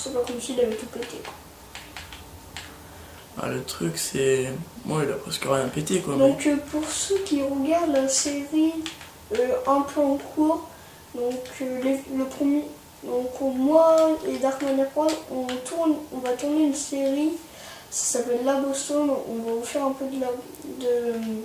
pas comme s'il avait tout pété. Ah, le truc, c'est. Moi, il a presque rien pété quoi. Donc, pour ceux qui regardent la série un peu en cours, donc le premier. Donc, moi et Darkman Prod, on va tourner une série. Ça s'appelle Labostone. On va vous faire un peu de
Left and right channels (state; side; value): identical; both; correlation 1.00